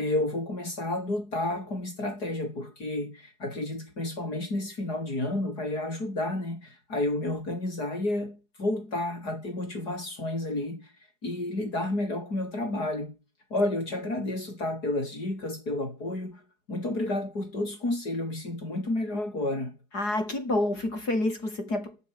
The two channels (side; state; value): right; late; 4.8 ms